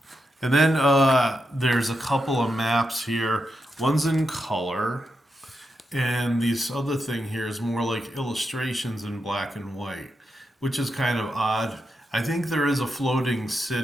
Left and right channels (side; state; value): both; normal; correlation 0.86